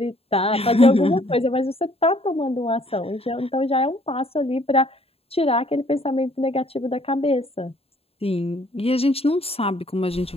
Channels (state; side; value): late; right; 0.28 ms